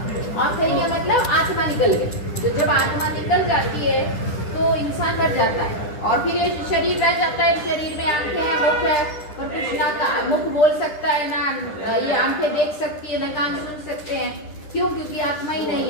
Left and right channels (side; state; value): right; late; 10 ms